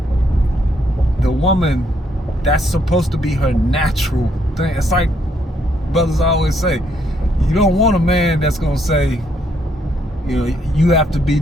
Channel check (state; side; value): normal; both; correlation 0.72